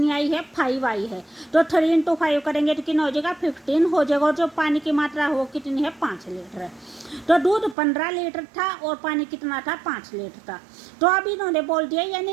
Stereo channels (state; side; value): drops out; left; at 7.8 s